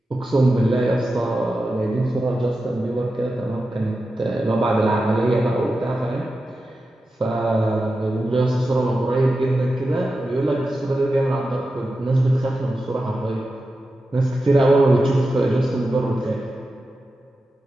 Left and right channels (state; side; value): normal; both; correlation 0.91